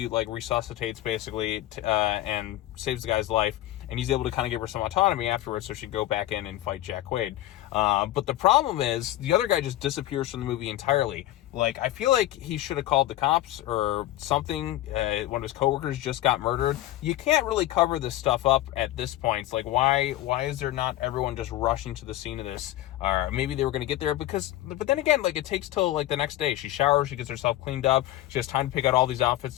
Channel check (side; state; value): right; quieter; 14.9 dB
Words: like resuscitates basically and saves the guy's life, and he's able to kind of give her some autonomy afterwards, so she'd go back in and fight Jack Quaid. But the problem is the other guy just disappears from the movie entirely. Like, I feel like he should have called the cops or something. One of his coworkers just got murdered. You can't really cover this stuff up at this point. It's like, why is there not everyone just rushing to the scene of this? Or maybe they were going to get there but then again, like, it takes till like the next day. She showers, she gets herself cleaned up, she has time to pick out all these outfits,